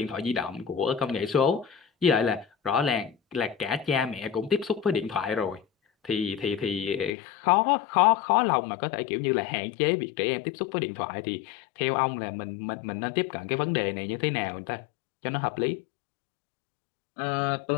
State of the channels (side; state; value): right; drops out; at 7.1 s